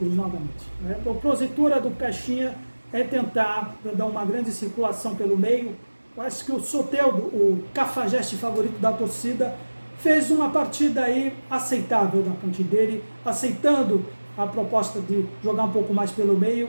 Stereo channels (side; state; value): both; inverted; correlation -1.00